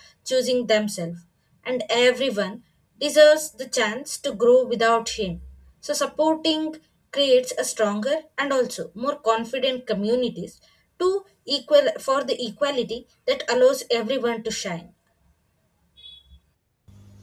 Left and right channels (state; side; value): identical; both; correlation 1.00